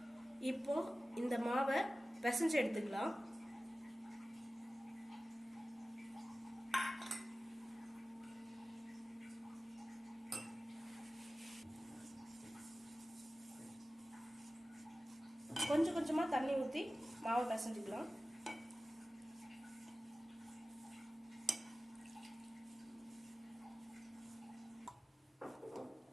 இப்போ இந்த மாவை பிசைஞ்சு எடுத்துக்கலாம். கொஞ்சம் கொஞ்சமா தண்ணி ஊற்றி மாவை பிசைஞ்சுக்கலாம்.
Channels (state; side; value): normal; both; correlation 0.96